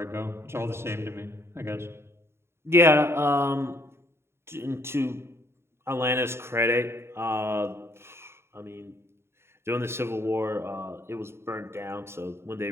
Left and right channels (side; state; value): left; late; 0.12 ms